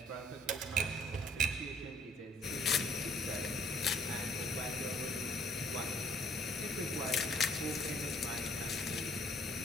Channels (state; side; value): normal; both; correlation 0.62